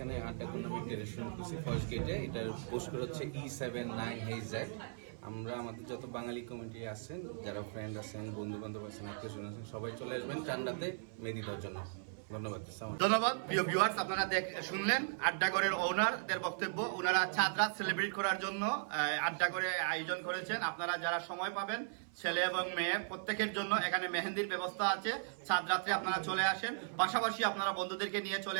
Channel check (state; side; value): silent; left; 53 dB below the other